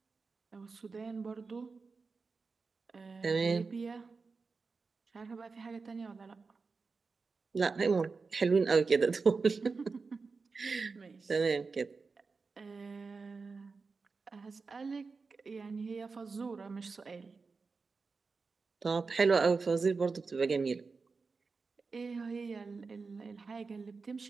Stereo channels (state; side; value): quieter; left; 4.5 dB